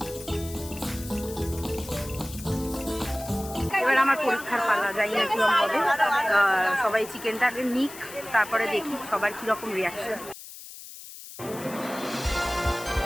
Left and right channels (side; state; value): left; noise; hiss, 14 dB below the sound